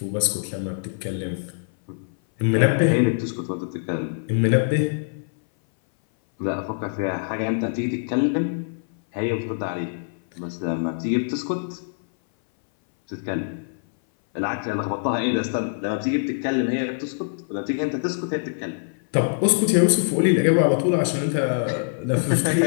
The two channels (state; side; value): silent; right; 59 dB below the other